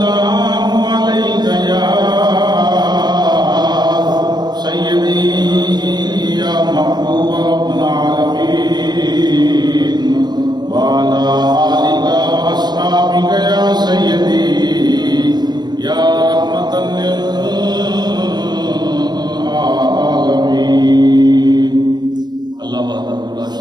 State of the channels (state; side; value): late; left; 0.20 ms